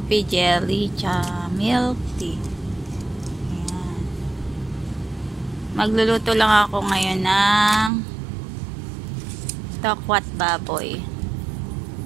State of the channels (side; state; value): left; drops out; at 7.9 s